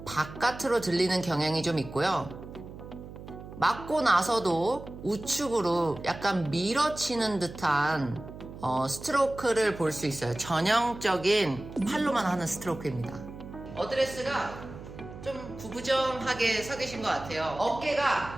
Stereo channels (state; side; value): noise; right; hum, 14 dB below the sound